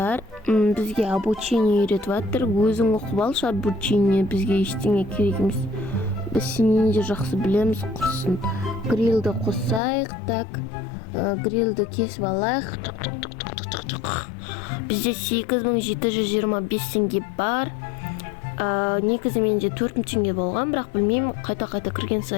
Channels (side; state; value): right; drops out; at 9.8 s